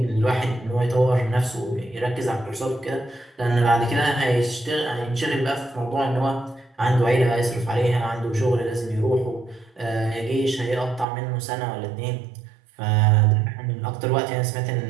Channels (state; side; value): drops out; left; at 11.1 s